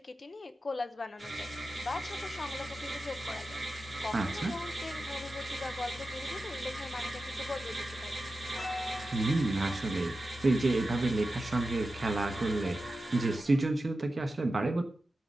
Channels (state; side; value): normal; both; correlation 0.92